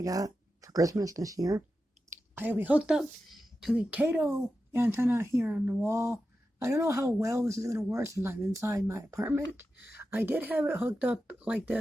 got for Christmas this year. I will be hooked up to the Kato antenna here on the wall. I don't know how well this is going to work since I'm inside my apartment. I did have it hooked up like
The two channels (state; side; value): normal; both; correlation 0.91